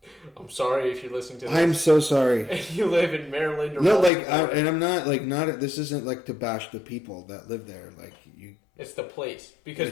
I'm sorry if you're listening to this. I'm so sorry. And you live in Maryland or no, Baltimore. and I'm not not. This isn't like to bash the people that live there. Like you, it's the place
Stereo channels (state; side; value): drops out; right; at 4.1 s